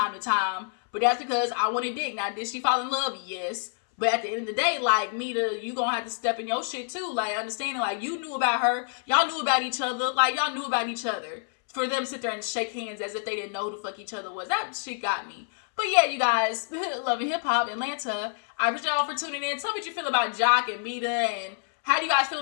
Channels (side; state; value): right; silent; 60 dB below the other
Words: to time, but that's because I wanted dick. Now, did she fall in love? Yes. But at the end of the day, like, Meda, you gonna have to step in your shit too. Like, understanding, like, you knew about her. Y'all knew about each other. Like, y'all knew about each other. For them to sit there and shake hands as if they didn't know who the fuck each other was. That shit got me. But yeah, you guys, loving hip hop, Atlanta. I appreciate y'all for tuning in. Tell me what you feel about Jock and Meda, and how do you guys feel